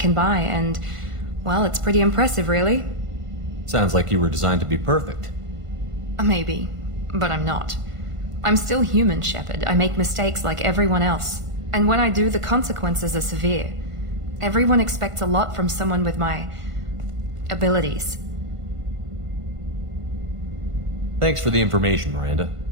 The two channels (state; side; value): late; left; 1.5 ms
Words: buy, and, well, it's pretty impressive, really. Sounds like you were designed to be perfect. Maybe, but I'm not. I'm still human, Shepard. I make mistakes like everyone else. And when I do, the consequences are severe. Everyone expects a lot from someone with my abilities. Thanks for the information, Miranda.